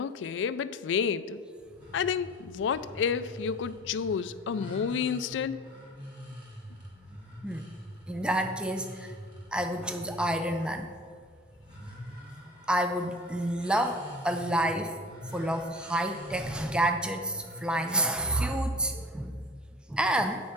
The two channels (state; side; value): normal; both; correlation 0.40